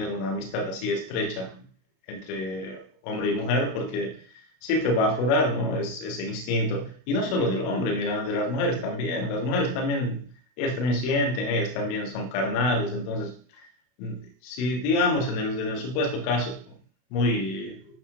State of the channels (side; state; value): right; late; 32 ms